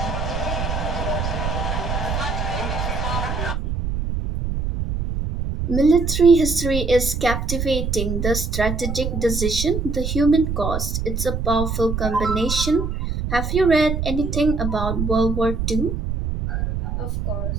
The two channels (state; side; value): noise; right; rumble, 2 dB below the sound